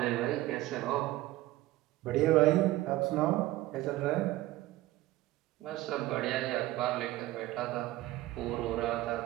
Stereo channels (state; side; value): quieter; left; 17.0 dB